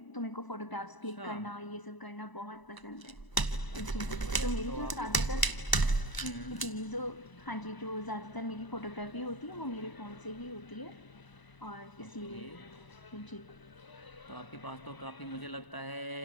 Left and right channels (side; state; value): right; late; 1.0 ms